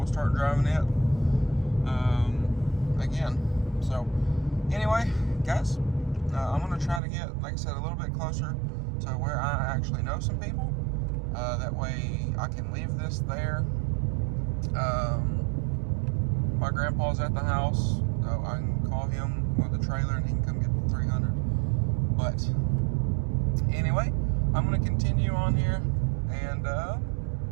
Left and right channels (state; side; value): drops out; left; at 7.0 s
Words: start driving it again. So, anyway, guys, I'm going to try to get, like I said, a little bit closer to where I actually know some people. That way I can leave this there. My grandpa's at the house, so I can call him with the trailer and he can come get the 300. But anyway, I'm going to continue on here, and